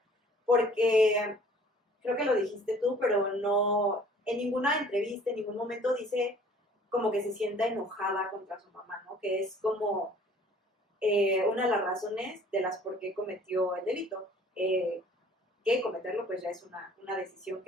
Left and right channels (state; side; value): normal; both; correlation 0.53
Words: Porque creo que lo dijiste tú, pero no, en ninguna entrevista, en ningún momento dice como que se sienta enojada contra su mamá, ¿no? Que es como una de las razones de las por qué cometió el delito. Que cometerlo pues ya es una decisión